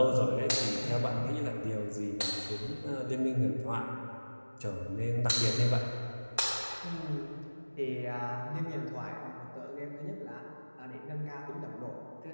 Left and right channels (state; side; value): inverted; both; correlation -1.00